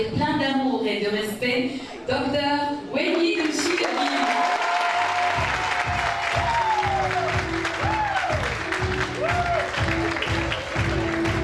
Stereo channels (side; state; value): both; identical; correlation 1.00